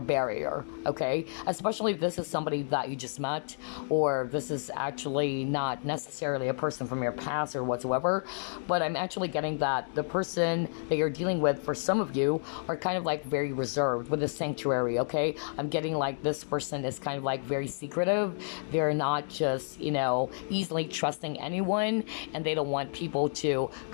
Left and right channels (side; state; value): right; silent; digital silence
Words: okay? Especially if this is somebody that you just met, or this is actually not necessarily a person from your past or whatsoever, but I'm actually getting that the person that you're dealing with, for some of you, are kind of like very reserved with the sanctuary, okay? I'm getting like this person is kind of like very secretive. They're not just, easily trusting anyone, and they don't want people to